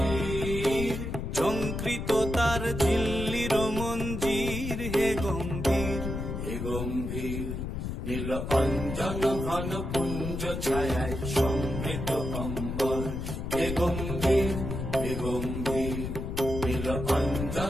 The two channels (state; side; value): noise; left; rumble, 4 dB below the sound